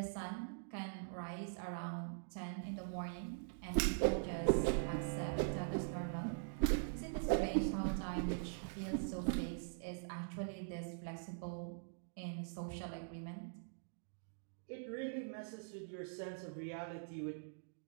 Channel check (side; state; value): left; silent; digital silence